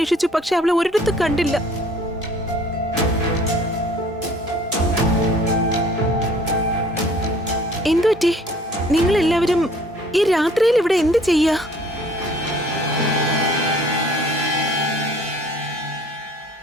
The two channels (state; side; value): normal; both; correlation 0.54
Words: പക്ഷെ അവളെ ഒരിടത്ത് കണ്ടില്ല. എന്തുപറ്റി? നിങ്ങൾ എല്ലാവരും ഈ രാത്രിയിൽ ഇവിടെ എന്ത് ചെയ്യാ?